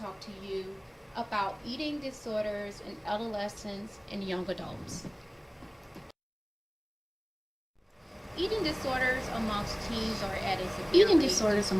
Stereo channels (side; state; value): both; identical; correlation 1.00